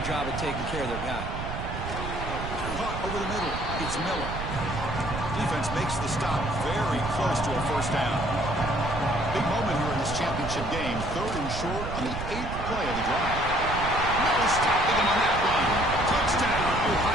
job of taking care of their guy. Caught over the middle. It's Miller. Defense makes the stop very close to a first down. Big moment here in this championship game. 3rd and short on the 8th play of the drive. No stopping him on that one. Touchdown,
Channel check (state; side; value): noise; right; rumble, 6 dB below the sound